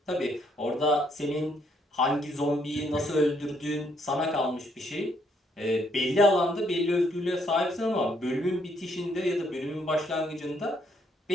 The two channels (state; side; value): normal; both; correlation 0.71